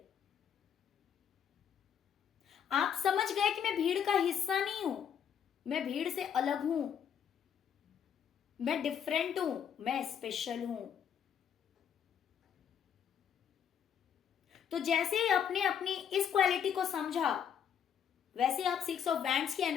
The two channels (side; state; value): right; quieter; 8.4 dB